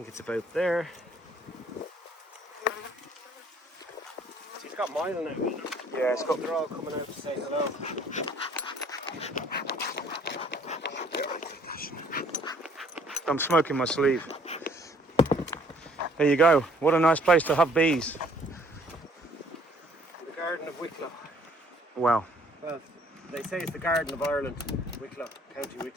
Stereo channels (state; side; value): normal; both; correlation 0.59